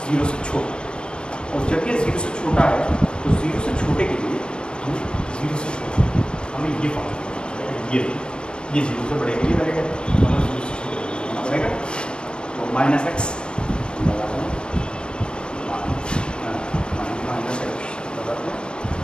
0 से छोटा, और जब ये 0 से छोटा है तो 0 से छोटे के लिए हमें 0 से छोटा हमें ये फॉर्म ये 0 से बड़े के लिए रहेगा, हमें 0 से छोटे होना पड़ेगा। तो -x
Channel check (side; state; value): right; late; 0.051 ms